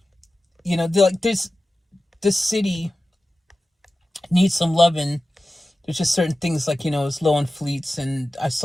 You know, they're like this city needs some loving. There's just certain things like, you know, it's low on fleets, and I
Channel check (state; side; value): normal; both; correlation 0.95